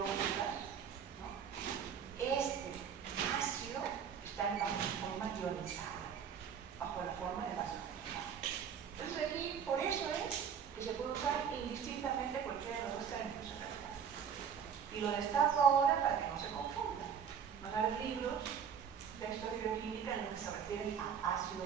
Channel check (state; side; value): quieter; left; 7.6 dB